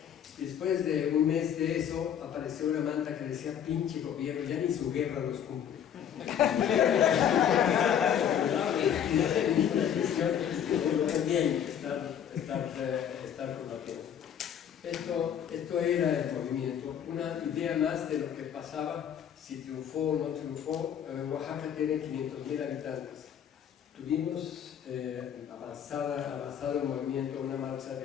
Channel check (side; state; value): right; quieter; 9.0 dB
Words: Y después de un mes de eso, apareció una manta que decía: pinche gobierno, ya ni su guerra los cumple. También estar combatiendo. Esto era el movimiento. Una idea más de lo que pasaba, si triunfó o no triunfó. Oaxaca tiene 500,000 habitantes. Tuvimos avanzado el movimiento, una marcha